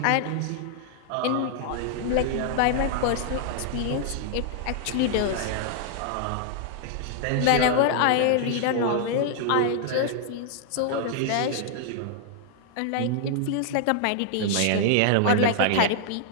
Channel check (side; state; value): both; different; correlation -0.01